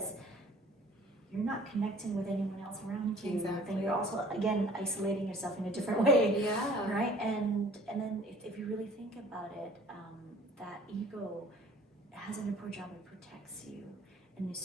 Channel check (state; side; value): normal; both; correlation 0.51